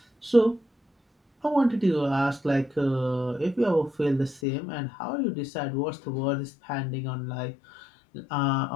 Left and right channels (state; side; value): drops out; right; at 4.4 s